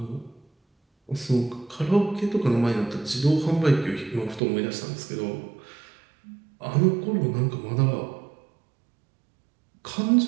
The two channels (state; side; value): drops out; left; at 4.4 s